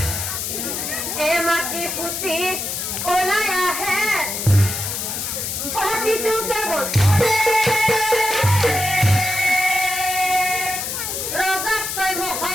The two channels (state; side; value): noise; left; hiss, 3 dB below the sound